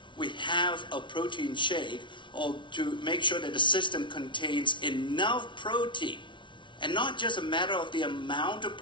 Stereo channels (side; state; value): right; late; 0.24 ms